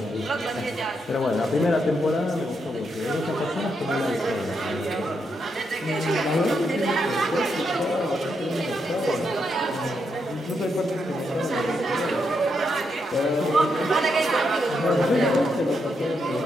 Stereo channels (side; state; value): both; normal; correlation 0.81